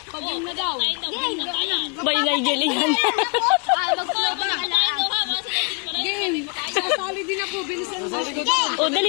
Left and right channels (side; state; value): right; quieter; 34.4 dB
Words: Pag-game na daw. Bailay galingan. Game. Sasali din ako. Bilisan mo. Oh,